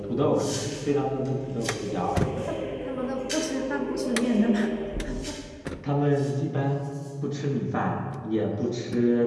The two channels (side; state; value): both; identical; correlation 1.00